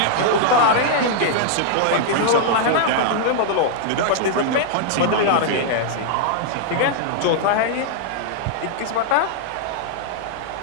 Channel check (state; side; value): different; both; correlation -0.01